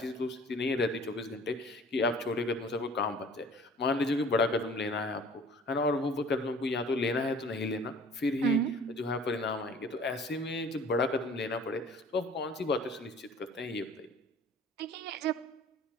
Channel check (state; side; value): normal; both; correlation 0.49